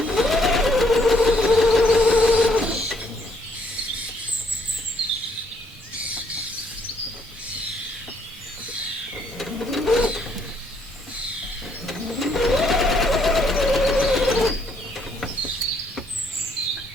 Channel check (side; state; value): both; normal; correlation 0.69